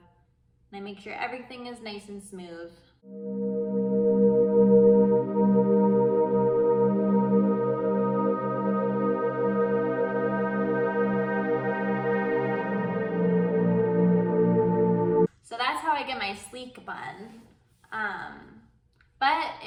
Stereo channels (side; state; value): both; identical; correlation 1.00